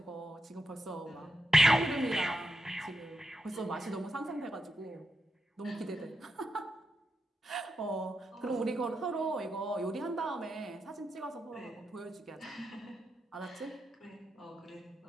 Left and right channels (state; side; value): normal; both; correlation 0.85